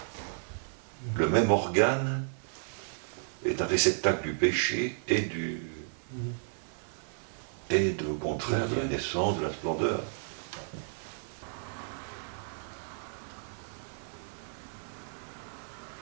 le même organe est un réceptacle du péché et au contraire de la naissance, de la splendeur.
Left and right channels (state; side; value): silent; left; digital silence